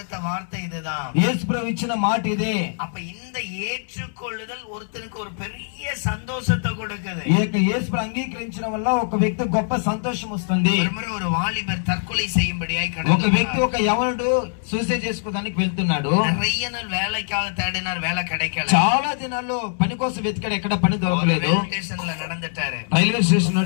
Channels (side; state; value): right; silent; 64 dB below the other